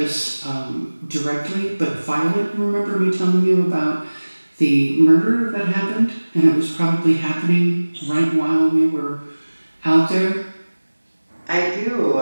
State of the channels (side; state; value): both; inverted; correlation -1.00